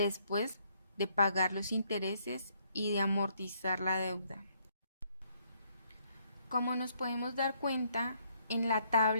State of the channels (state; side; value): inverted; both; correlation -0.69